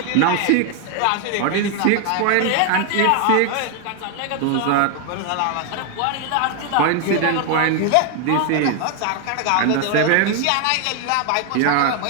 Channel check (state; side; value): different; both; correlation 0.00